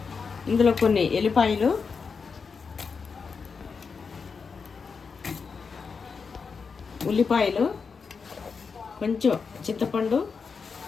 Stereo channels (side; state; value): right; quieter; 5.3 dB